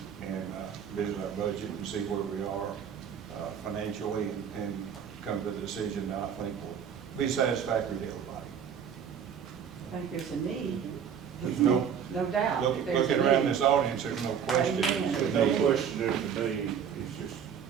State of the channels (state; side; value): quieter; left; 7.8 dB